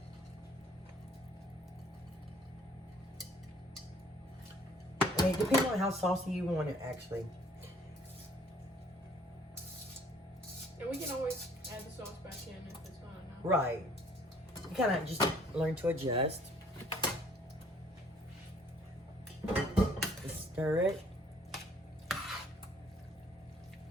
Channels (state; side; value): normal; both; correlation 0.58